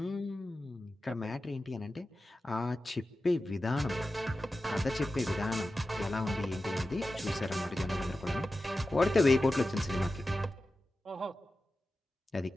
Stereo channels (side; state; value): both; normal; correlation 0.93